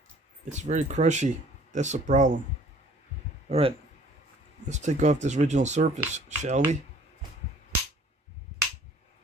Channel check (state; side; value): normal; both; correlation 0.54